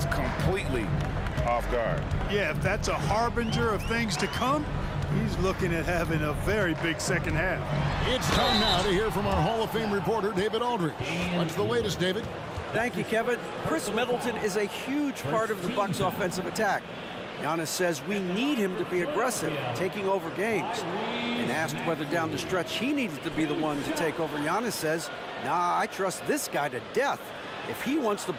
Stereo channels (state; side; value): identical; both; correlation 1.00